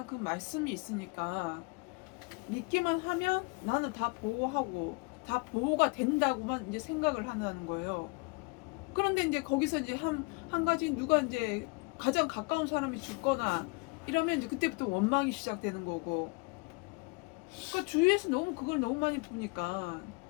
그 말씀이 있으니까 믿기만 하면 나는 다 보호하고 다 보호가 된다고만 이제 생각을 하는 거예요. 그런데 이제 거기서 이제 한 가지 누가 이제 가장 가까운 사람이 죽거나 이러면 이제 그때부터 원망이 시작되는 거고. 그러니까 주위에서 너무 그걸 너무 많이 보니까.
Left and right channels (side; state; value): right; quieter; 29.6 dB